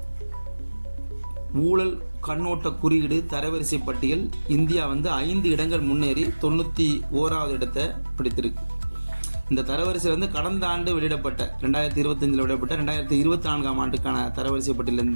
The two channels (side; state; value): both; inverted; correlation -1.00